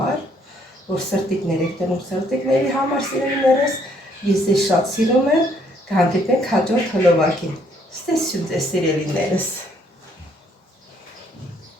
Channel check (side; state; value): both; normal; correlation 0.67